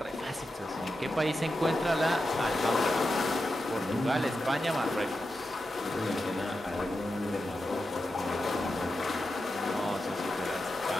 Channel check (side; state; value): both; normal; correlation 0.89